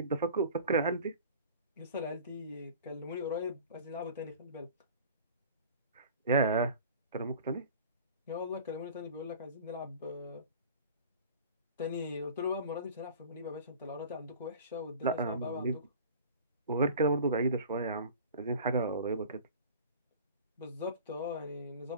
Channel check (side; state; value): both; inverted; correlation -0.42